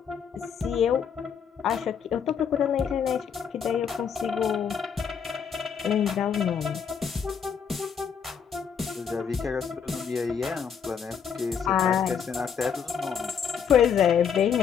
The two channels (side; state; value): right; quieter; 7.2 dB